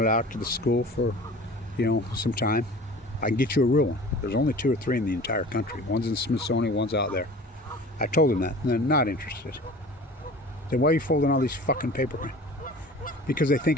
out to the school for, you know, some time. I can get you a real one. There's only 2 or 3 in the entire country. One's in the Smithsonian, one's out there. I told him that, and they're not interested. Then why are you folding all these fucking paper? Because they think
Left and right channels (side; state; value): both; normal; correlation 0.42